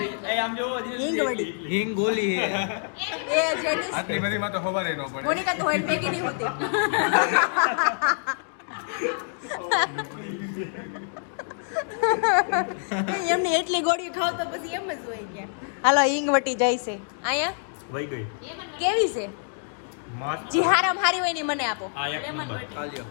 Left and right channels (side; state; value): right; silent; digital silence